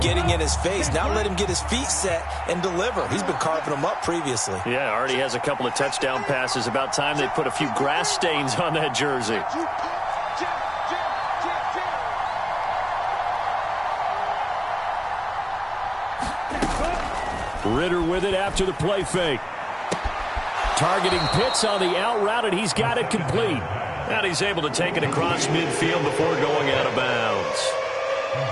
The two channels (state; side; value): identical; both; correlation 1.00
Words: getting in his face. Now let him get his feet set and deliver. He's been carving them up previously. Yeah, already has a couple of touchdown passes. About time they put a few grass stains on that jersey. Ritter with it after the play fake. Targeting Pitts on the out route, and he's got it complete. And he's able to take it across midfield before going out of bounds.